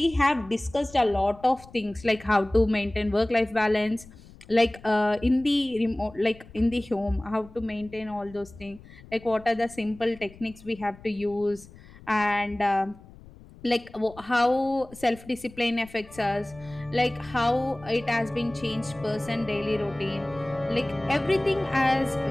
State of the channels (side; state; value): left; noise; rumble, 21 dB below the sound